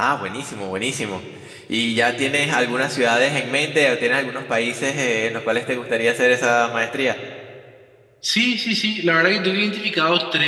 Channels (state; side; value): identical; both; correlation 1.00